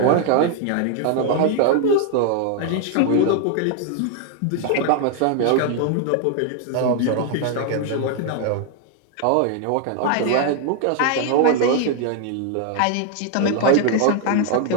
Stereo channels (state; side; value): different; both; correlation 0.00